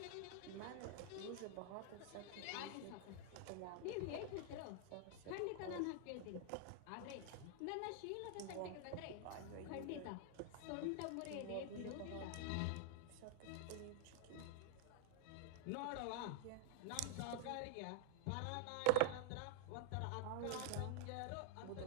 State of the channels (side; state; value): both; different; correlation 0.00